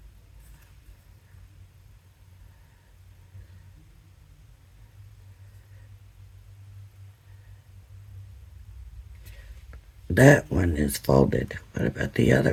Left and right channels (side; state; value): both; identical; correlation 1.00